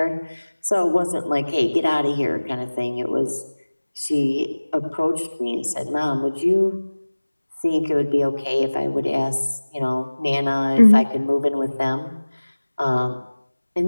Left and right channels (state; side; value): inverted; both; correlation -1.00